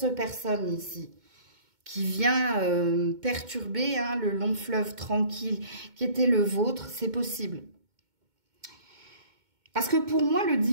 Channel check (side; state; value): left; late; 2.2 ms